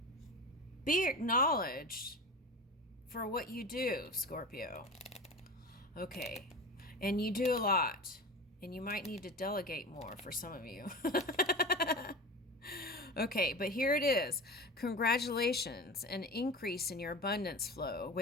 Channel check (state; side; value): normal; both; correlation 0.31